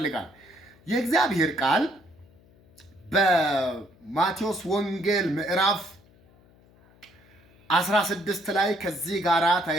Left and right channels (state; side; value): noise; left; hum, 29 dB below the sound